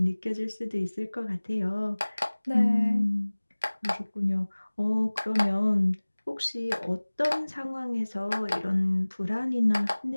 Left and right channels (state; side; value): inverted; both; correlation -1.00